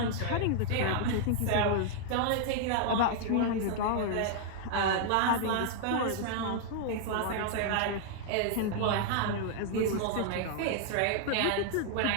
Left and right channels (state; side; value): different; both; correlation -0.01